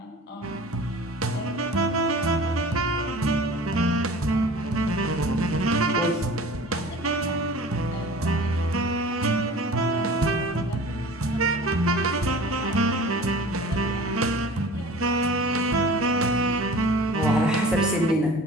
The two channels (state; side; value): normal; both; correlation 0.41